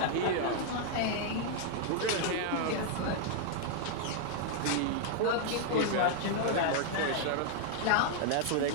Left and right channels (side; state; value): both; different; correlation 0.00